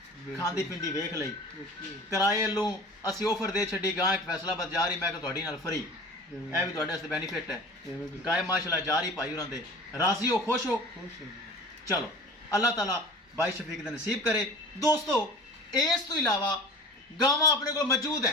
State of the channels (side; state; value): both; normal; correlation 0.40